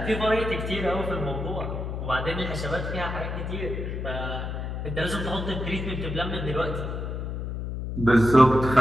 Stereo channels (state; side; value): noise; left; hum, 4 dB below the sound